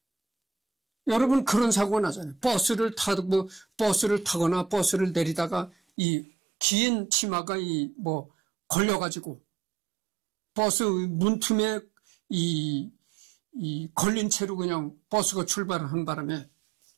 여러분 그런 사고가 나잖아요. 버스를 타거나 버스를 내리다가 이 긴 치마가 뭐 걸려가지고 버스 문틈에 이 걸린 채로 그냥 버스가 출발을 한 바람에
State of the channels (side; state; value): left; drops out; at 5.8 s